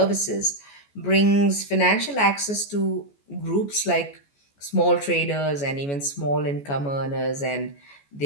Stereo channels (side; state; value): right; late; 14 ms